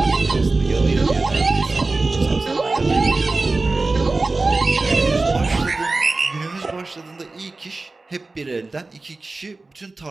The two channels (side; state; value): left; quieter; 3.4 dB